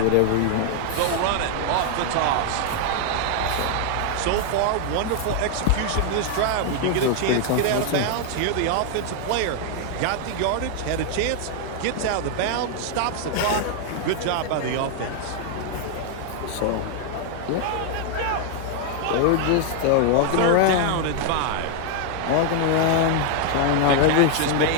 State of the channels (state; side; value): different; both; correlation 0.00